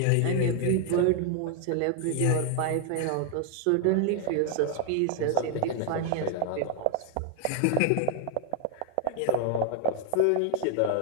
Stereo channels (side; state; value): both; different; correlation 0.00